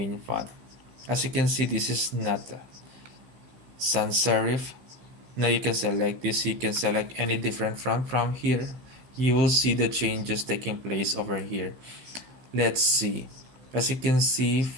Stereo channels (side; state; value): left; late; 16 ms